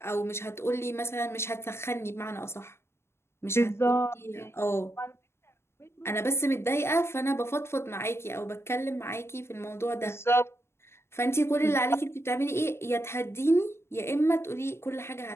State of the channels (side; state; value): right; late; 0.12 ms